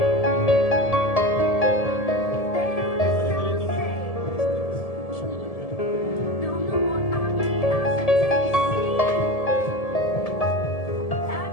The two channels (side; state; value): right; late; 1.7 ms